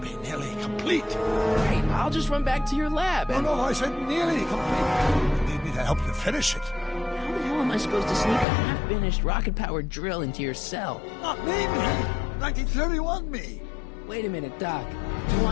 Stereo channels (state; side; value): drops out; right; at 8.5 s